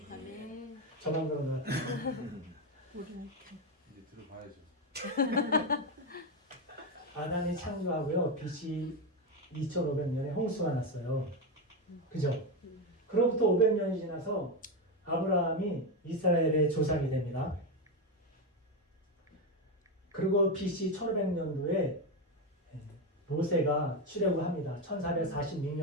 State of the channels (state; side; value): normal; both; correlation 0.11